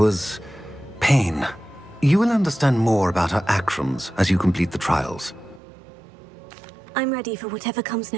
pain. You will understand more about her actions as you complete the trials. I'm ready for whatever comes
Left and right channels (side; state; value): left; drops out; at 5.6 s